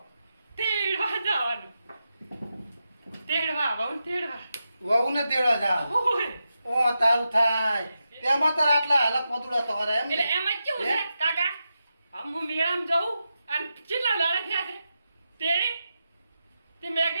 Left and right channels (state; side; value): inverted; both; correlation -0.88